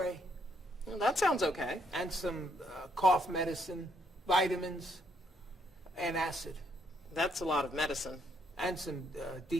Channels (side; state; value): both; normal; correlation 0.72